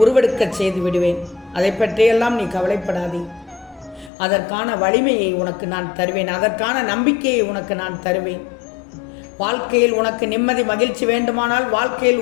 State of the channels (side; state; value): right; drops out; at 4.1 s